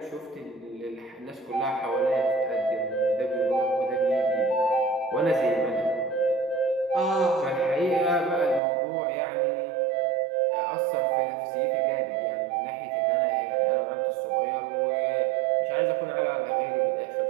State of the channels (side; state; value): left; drops out; at 8.6 s